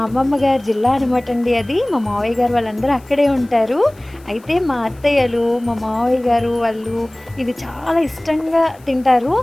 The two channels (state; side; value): noise; left; hiss, 29 dB below the sound